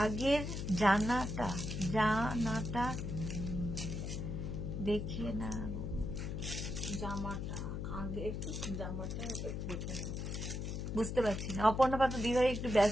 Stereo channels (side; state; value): left; noise; hum, 4 dB below the sound